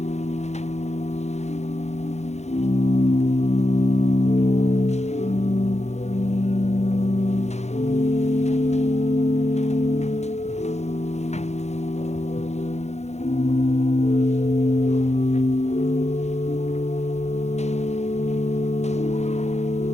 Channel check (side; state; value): right; late; 0.32 ms